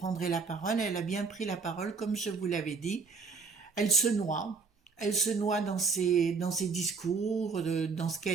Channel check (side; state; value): left; quieter; 4.9 dB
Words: la parole, elle a bien pris la parole, comme je vous l'avais dit. Elle se noie dans ses discours, dans ce